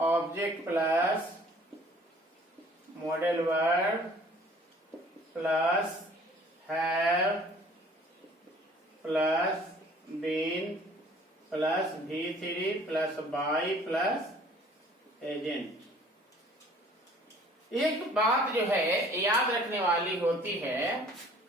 plus modal verb plus have plus been plus V3 plus by plus agent. एक बात जो है याद रखने वाली होती है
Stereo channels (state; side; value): normal; both; correlation 0.53